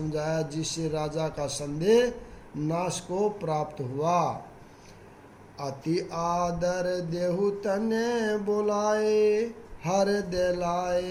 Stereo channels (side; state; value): both; identical; correlation 1.00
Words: जिससे राजा का संदेह नाश को प्राप्त हुआ। अति आदर देहु तने बोलाए, हृदय